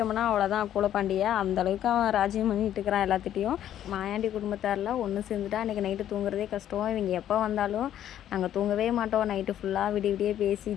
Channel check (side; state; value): right; quieter; 11.1 dB